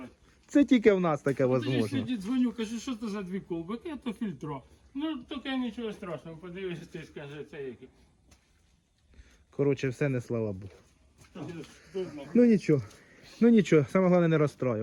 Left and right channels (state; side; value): identical; both; correlation 1.00